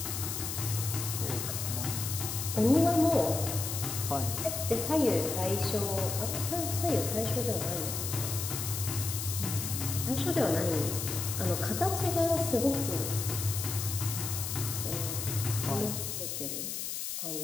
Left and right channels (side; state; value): left; noise; hiss, 4 dB below the sound